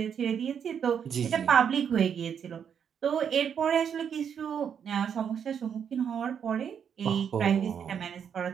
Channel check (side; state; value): left; quieter; 7.8 dB